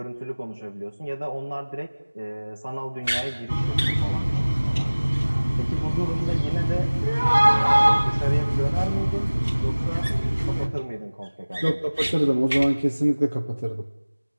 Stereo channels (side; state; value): both; inverted; correlation -1.00